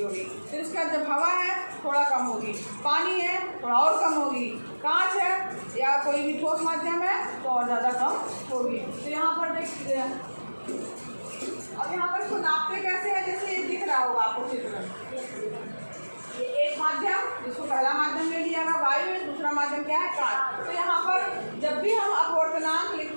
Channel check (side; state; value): both; inverted; correlation -1.00